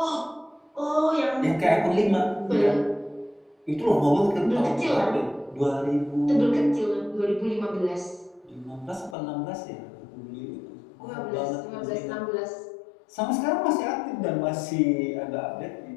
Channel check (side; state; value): right; drops out; at 9.2 s